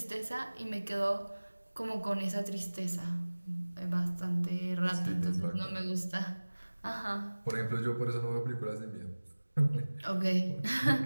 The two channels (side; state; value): both; inverted; correlation -1.00